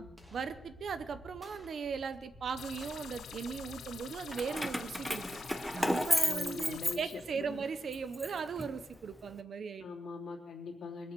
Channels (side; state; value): both; normal; correlation 0.88